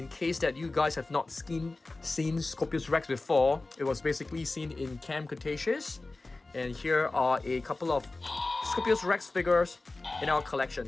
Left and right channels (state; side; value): quieter; right; 3.2 dB